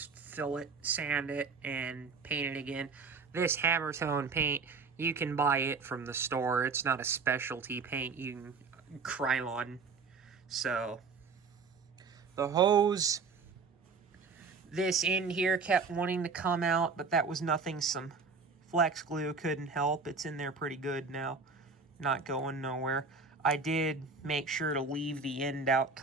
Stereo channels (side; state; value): left; quieter; 4.7 dB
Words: fill it, sand it, and paint it again. This hammer tone paint, you can buy it from the store. It's not a specialty paint. You can Krylon. So, the hose, this end here kept wanting to come out, but that was nothing some flex glue couldn't help. It's in there pretty good now. Not going nowhere. I did make sure to leave the end out,